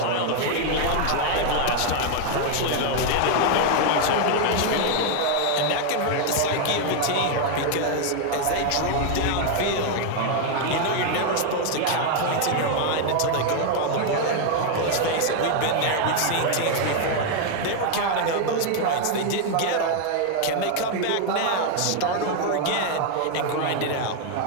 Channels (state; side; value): different; both; correlation 0.00